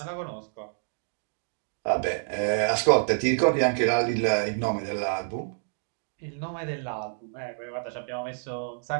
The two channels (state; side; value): silent; left; digital silence